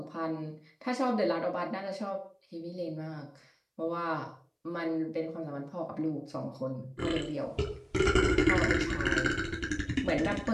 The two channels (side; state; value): both; identical; correlation 1.00